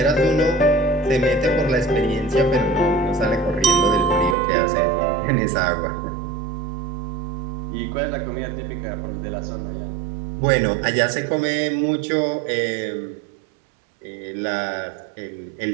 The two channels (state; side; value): drops out; left; at 4.4 s